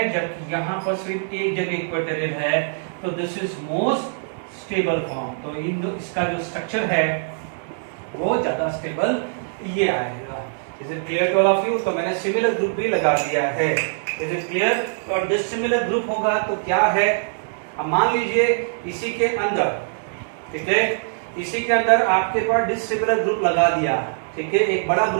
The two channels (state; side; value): silent; left; digital silence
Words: जबकि यहाँ पर सिर्फ 1 जगह इक्वेटोरियल है, तो this is most stable form. तो इसका जो स्ट्रक्चर है वो ज्यादा स्टेबल ये आएगा। Is it clear to all of you? तो मैंने सिमिलर ग्रुप भी लगा दिया है। Is it clear? और डिसिमिलर ग्रुप होगा तो क्या है, अब मान लीजिए इसी के अंदर, ठीक है, इसी के अंदर आपके पास डिसिमिलर ग्रुप लगा दिया, ठीक है, एक बड़ा